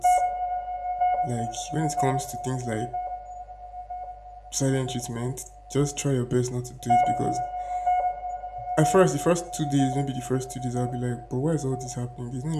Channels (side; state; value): both; identical; correlation 1.00